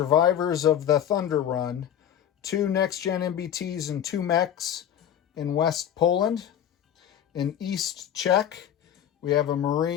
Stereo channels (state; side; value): quieter; right; 9.9 dB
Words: of the Thunder Run, 2 next-gen MBTs and 2 mechs in West Poland. In East Czech, we have a